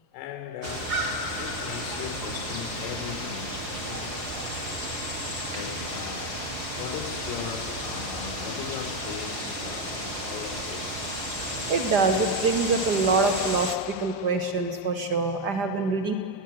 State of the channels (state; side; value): late; left; 5.1 ms